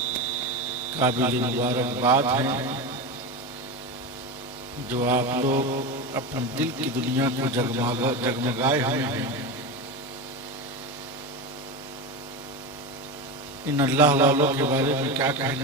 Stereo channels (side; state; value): both; normal; correlation 0.20